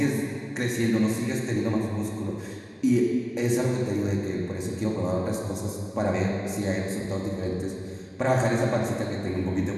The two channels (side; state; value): both; identical; correlation 1.00